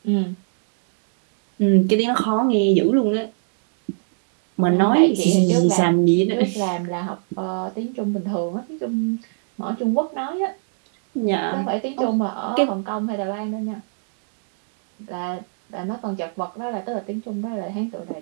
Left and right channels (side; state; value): left; silent; digital silence